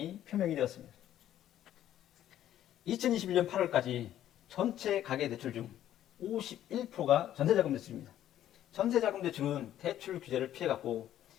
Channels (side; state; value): right; quieter; 11.8 dB